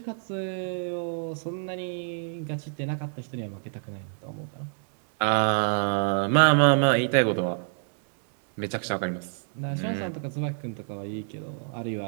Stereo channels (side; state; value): left; silent; digital silence